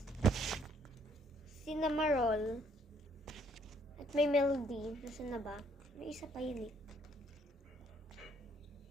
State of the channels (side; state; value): both; normal; correlation 0.66